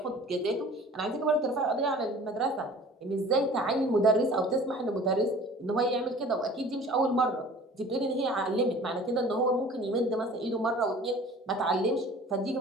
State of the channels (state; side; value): normal; both; correlation 0.46